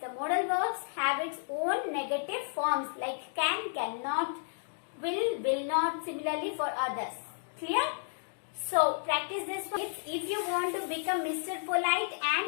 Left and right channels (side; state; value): right; silent; digital silence